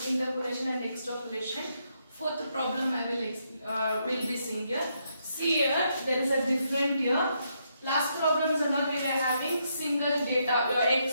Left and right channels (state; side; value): inverted; both; correlation -0.77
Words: interpolation and extrapolation. Fourth problem I will be seeing here. See here, there is a different here. Last problems and all we were having single data. Your